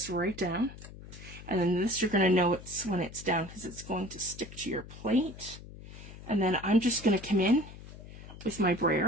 right down. And then this, you're going to know it's when it's down because it's going to stick to your plate. And then I'm just going to come in with my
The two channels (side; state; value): left; noise; hum, 15 dB below the sound